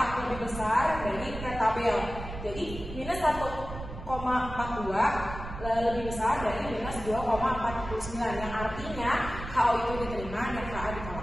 lebih besar dari T tabel. Jadi minus 1,42 lebih besar dari minus 2,49, yang artinya HO itu diterima dan HA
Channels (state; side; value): noise; right; rumble, 10 dB below the sound